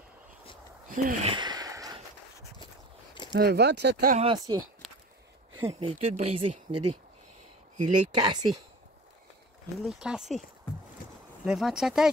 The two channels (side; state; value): both; normal; correlation 0.38